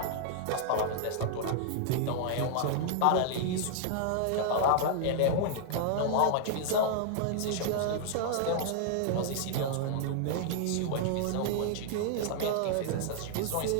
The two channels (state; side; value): different; both; correlation -0.01